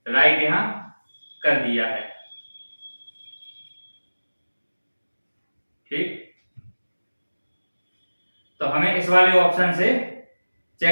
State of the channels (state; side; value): inverted; both; correlation -1.00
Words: राइट यहाँ कर दिया है। ठीक, तो हमें इस वाले ऑप्शन से